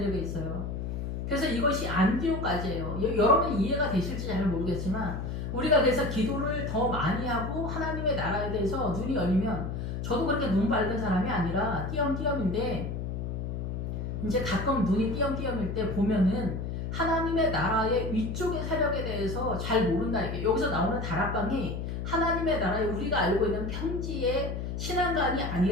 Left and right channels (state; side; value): noise; left; hum, 4 dB below the sound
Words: 있어요. 그래서 이것이 안디옥까지예요. 여러분 이해가 되실지 잘 모르겠지만 우리가 그래서 기도를 더 많이 하고 하나님의 나라에 대해서 눈이 열리면, 저도 그렇게 눈 밝은 사람이 아니라 띄엄띄엄인데 이제 가끔 눈이 띄엄띄엄일 때 보면은 하나님의 나라의 위쪽의 세력에 대해서 잘 모른다. 이게 여기서 나오는 다락방이 하나님의 나라에 우리가 알고 있는 평지의 신앙관이